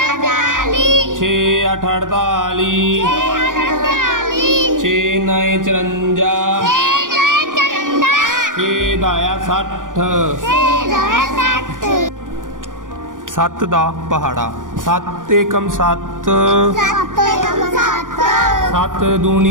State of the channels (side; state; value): left; late; 0.89 ms